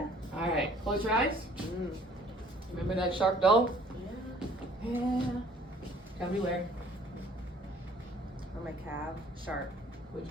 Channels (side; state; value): both; normal; correlation 0.56